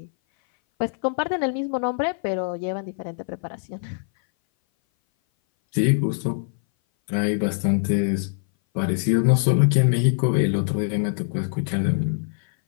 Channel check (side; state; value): right; silent; 59 dB below the other